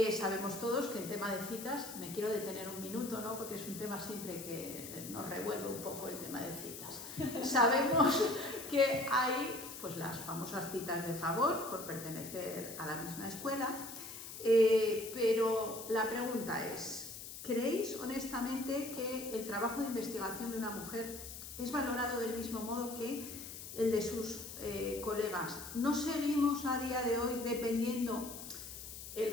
Sabemos todos que en tema de citas, me quiero detener un minuto, ¿no? Porque es un tema siempre que nos revuelve un poco el tema de citas. Sabemos que hay pues, las famosas citas de favor por pertenecer a la misma escuela, pero la pregunta es, ¿creéis honestamente que el trabajo de investigación de una mujer es valorado del mismo modo que el de sus colegas? ¿No seguimos a día de hoy dependiendo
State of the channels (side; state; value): left; noise; hiss, 11 dB below the sound